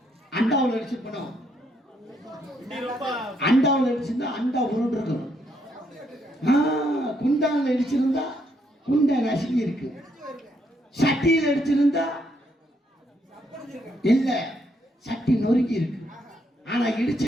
அண்டாவில் அடிச்சிருப்பேன். அண்டாவில் அடிச்சிருந்தா அண்டா உருண்டு இருக்கணும். குண்டான்ல அடிச்சிருந்தா குண்டா நசுக்கி இருக்கு. சட்டியில் அடிச்சிருந்தா இல்ல, சட்டி நொறுக்கி இருக்கு. ஆனா இடிச்ச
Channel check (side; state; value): both; normal; correlation 0.74